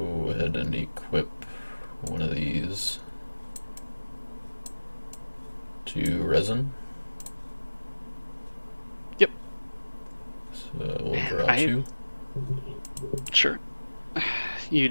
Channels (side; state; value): both; inverted; correlation -1.00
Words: ahead and equip one of these to resin. Yep. So we'll Man, draw two. Sure. You